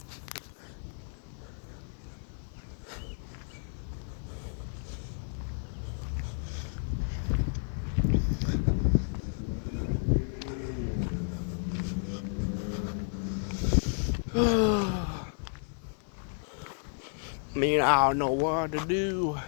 Man, I don't know what to do.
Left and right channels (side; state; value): right; silent; 57 dB below the other